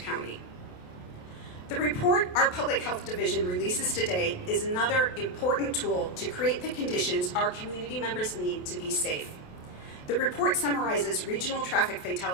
County. The report our Public Health Division releases today is another important tool to create the conditions our community members need to be safe. The report summarizes regional traffic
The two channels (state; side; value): late; right; 28 ms